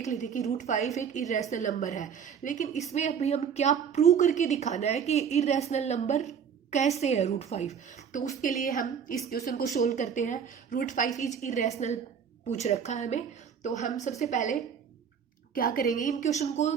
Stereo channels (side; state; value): left; quieter; 7.3 dB